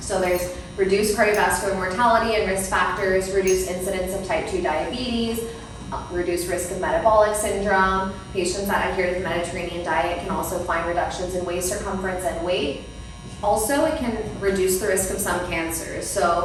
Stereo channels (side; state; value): both; identical; correlation 1.00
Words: So there's reduced cardiovascular mortality and risk factors, reduced incidence of type 2 diabetes, reduced risk of metabolic syndrome. Patients that adhere to the Mediterranean diet can also find reductions in waist circumference and weight. Also, it can reduce the risk of some cancers.